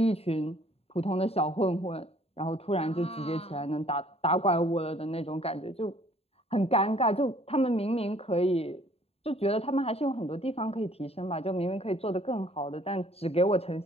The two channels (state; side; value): late; right; 0.29 ms